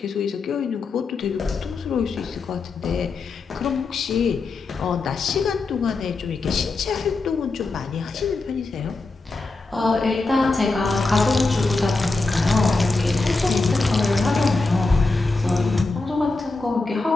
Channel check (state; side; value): quieter; right; 3.6 dB